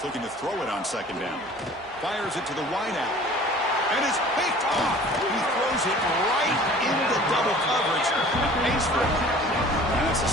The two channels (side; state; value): both; normal; correlation 0.47